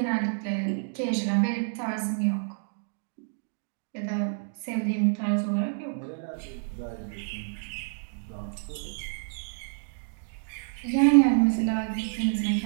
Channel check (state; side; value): silent; left; digital silence